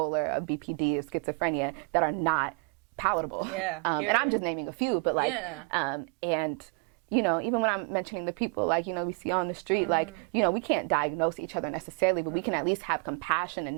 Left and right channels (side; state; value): left; quieter; 34.4 dB